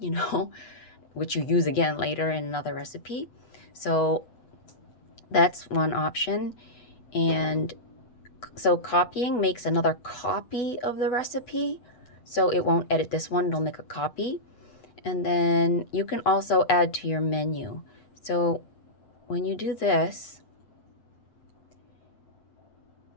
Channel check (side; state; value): right; late; 8.2 ms